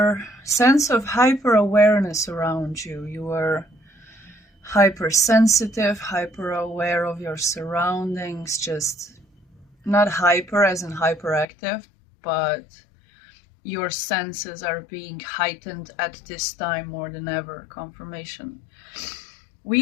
sense of hyper awareness around you. You are hypersensitive, hyper aware of your surroundings, just not hyper as in hyperactive, but your senses are being heightened at this time more than ever. Confirmation.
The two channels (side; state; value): right; drops out; at 11.5 s